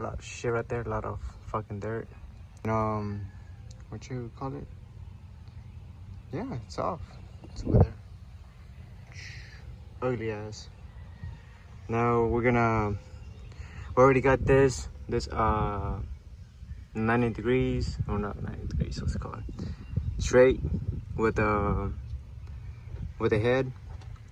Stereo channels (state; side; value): identical; both; correlation 1.00